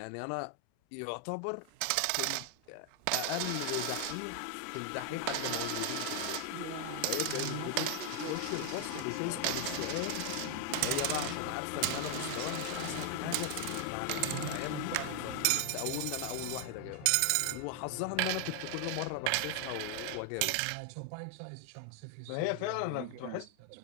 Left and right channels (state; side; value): different; both; correlation 0.00